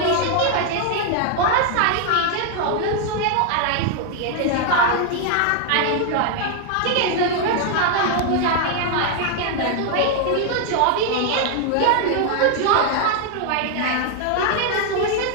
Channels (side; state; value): both; different; correlation 0.00